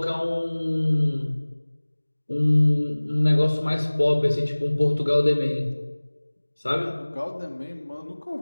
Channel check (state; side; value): inverted; both; correlation -1.00